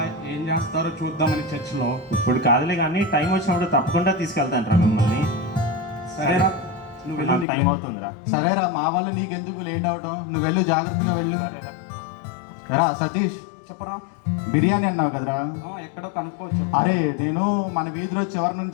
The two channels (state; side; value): drops out; right; at 7.5 s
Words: ఏం చేస్తారో చూద్దామని చర్చిలో. ఇప్పుడు కాదులే కానీ టైం వచ్చినప్పుడు తప్పకుండా తీసుకెళ్తాను రా మిమ్మల్ని. సరేరా, నువ్వు నాకు వెళ్ళి టైం అవుతుందిరా. సరేరా, మా వాళ్ళు నీకెందుకు లేట్ అవటం, నువ్వు వెళ్ళు, జాగ్రత్తగా వెళ్ళు. రా సతీష్, చెప్పరా. బిర్యానీ అన్నావు కదరా. ఎక్కడో కనుక్కోవచ్చు. అరే నేను మన వీధిలో చివరి